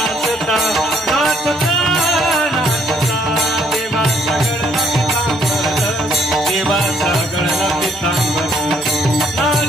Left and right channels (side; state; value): both; normal; correlation 0.67